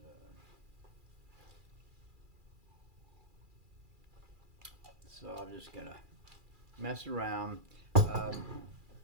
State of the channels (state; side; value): late; left; 2.4 ms